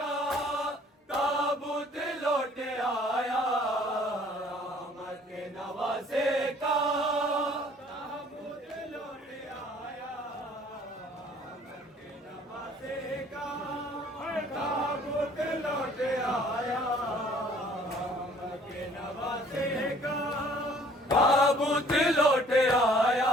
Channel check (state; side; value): normal; both; correlation 0.56